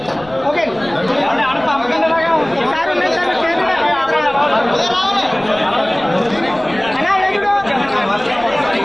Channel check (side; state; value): left; noise; rumble, 22 dB below the sound